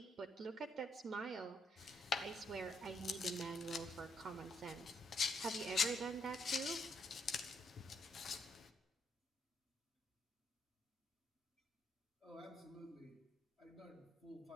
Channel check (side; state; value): both; normal; correlation 0.75